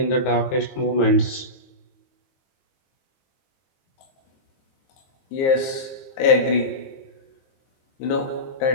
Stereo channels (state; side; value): late; right; 22 ms